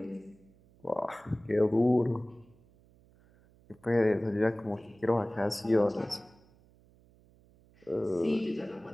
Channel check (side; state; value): right; noise; hum, 29 dB below the sound